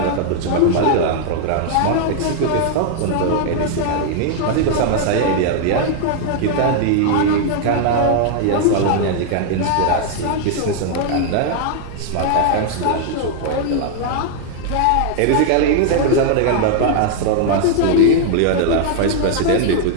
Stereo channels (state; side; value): different; both; correlation 0.00